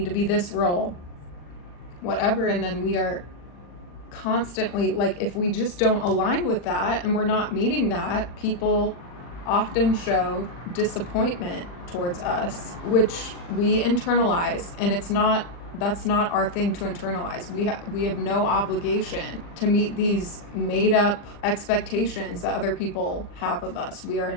to be this role, whatever, and then we are constantly, like, if we just don't align with that and we're not meeting that, people often show disappointment towards us, which we internalize, and that's not our thing to internalize. We have no obligation to meet these made up expectations that other people have of us. We are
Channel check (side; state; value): right; late; 40 ms